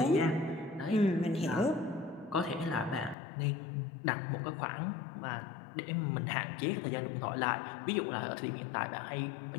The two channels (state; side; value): drops out; right; at 3.2 s